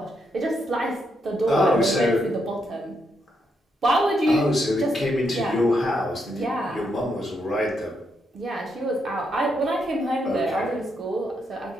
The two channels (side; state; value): both; normal; correlation 0.79